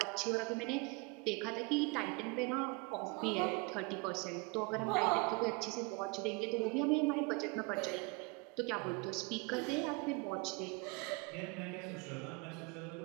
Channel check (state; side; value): quieter; left; 28.4 dB